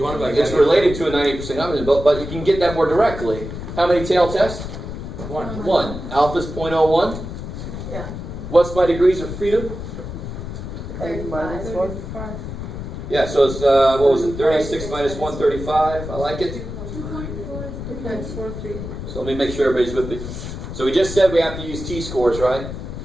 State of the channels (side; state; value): left; noise; rumble, 8 dB below the sound